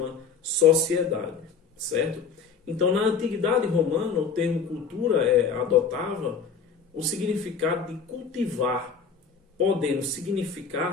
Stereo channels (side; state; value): right; quieter; 5.8 dB